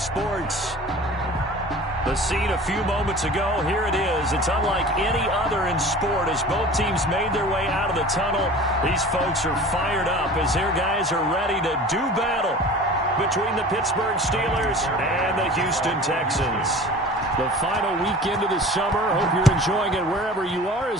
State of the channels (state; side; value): normal; both; correlation 0.41